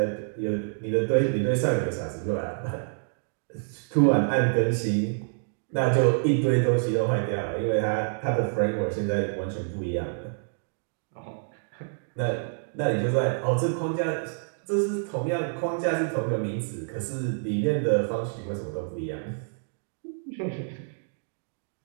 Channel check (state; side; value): silent; left; digital silence